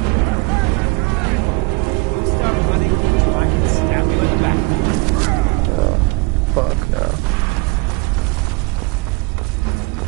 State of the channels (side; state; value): left; quieter; 27.4 dB